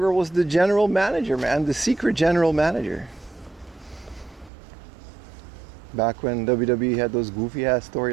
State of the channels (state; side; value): drops out; left; at 4.5 s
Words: was the general manager, man. The secret general manager. Back when WWE had those goofy ass